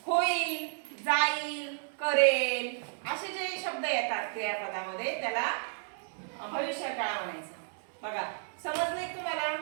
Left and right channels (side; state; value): left; silent; digital silence